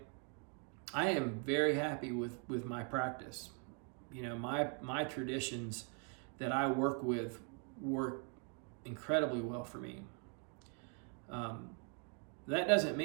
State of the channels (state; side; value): quieter; left; 39.1 dB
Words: I am very happy with my practice. My traditions that I work with work incredibly well for me. That doesn't